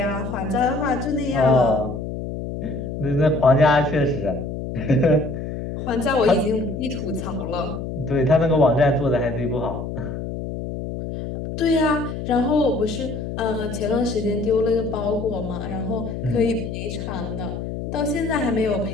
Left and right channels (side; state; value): left; noise; hum, 6 dB below the sound